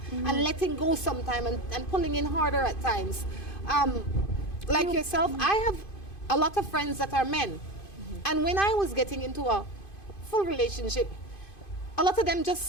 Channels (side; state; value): right; late; 2.5 ms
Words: letting go sometime and pulling in harder at times. Like yourself, I have a lot of friends that are men. And when I was getting into a full relationship, a lot of them